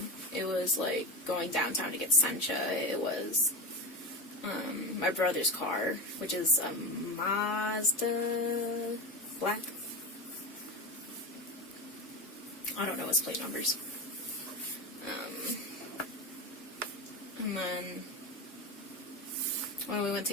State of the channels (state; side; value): normal; both; correlation 0.19